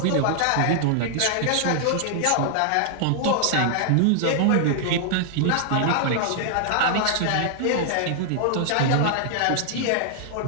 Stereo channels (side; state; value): both; different; correlation -0.01